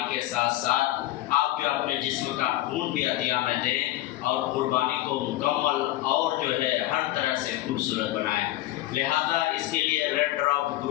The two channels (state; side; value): quieter; right; 15.8 dB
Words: के साथ साथ आप जो अपने जिस्म का खून भी अतिया में दें और कुर्बानी को मुकम्मल और जो है हर तरह से खूबसूरत बनाएं। लिहाजा इसके लिए रेड ड्रॉप